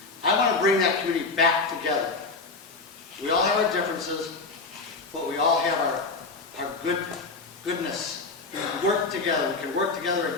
I want to bring that community back together. We all have our differences, but we all have our goodness. We can work together. We can work together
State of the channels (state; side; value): quieter; right; 3.9 dB